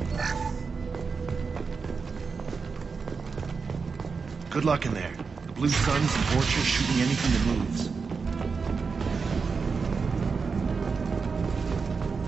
Good luck in there. The Blue Suns and Vorcha shooting anything that moves.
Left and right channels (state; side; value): quieter; left; 5.0 dB